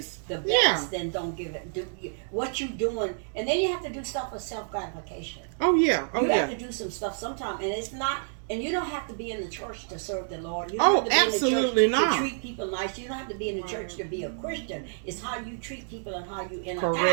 give it the Yeah. best, then don't give it. Do what you're doing, and then you have to do stuff for self gratification. oh yeah, You have to do some stuff sometime, and it's not And you don't have to be in the church to serve the Lord. You Oh, don't have to be absolutely in the church not. to treat people nice. You don't have to be in the church to be a Christian. It's how you treat people and how you interact.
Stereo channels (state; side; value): silent; left; digital silence